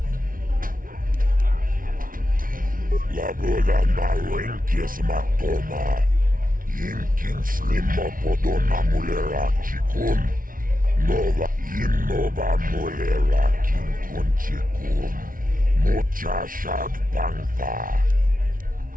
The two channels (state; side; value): late; left; 0.40 ms